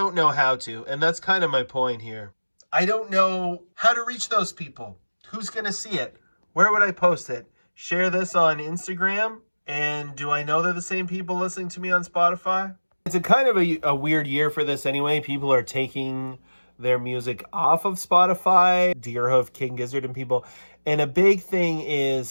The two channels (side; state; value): both; inverted; correlation -1.00